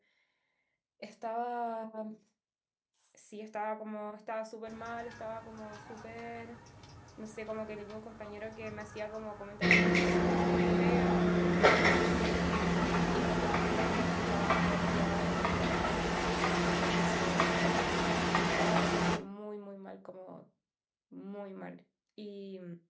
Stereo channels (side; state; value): both; identical; correlation 1.00